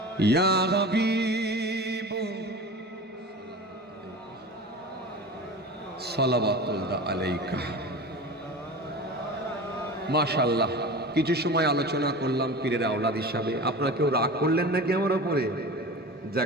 या हबीब সালাওয়াতুল্লাহ আলাইকা। মাশাআল্লাহ, কিছু সময় আলোচনা করলাম পীরের আওলাদ হিসাবে। আপনারা কেউ রাগ করলেন নাকি আমার উপরে?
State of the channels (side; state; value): both; normal; correlation 0.33